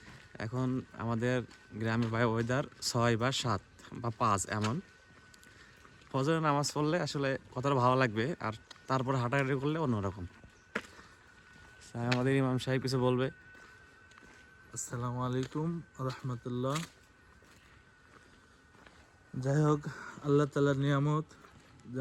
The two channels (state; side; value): identical; both; correlation 1.00